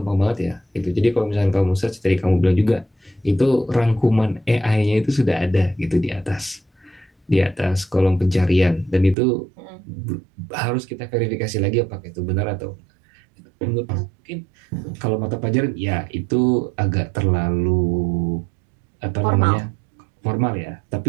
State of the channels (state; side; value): drops out; left; at 9.2 s